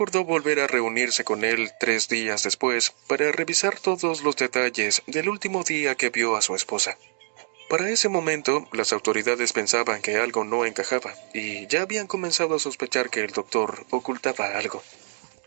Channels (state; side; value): silent; left; digital silence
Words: volver a reunirse con él 3 días después para revisar todos los detalles del último día que vio a su esposa. Para ese momento, las autoridades pensaban que algo no encajaba y ya habían comenzado a sospechar que el doctor ocultaba algo.